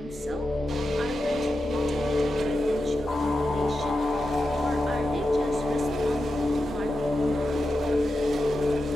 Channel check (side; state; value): right; noise; hum, 26 dB below the sound